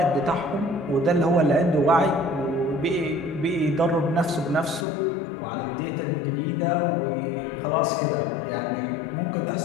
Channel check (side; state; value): right; drops out; at 4.9 s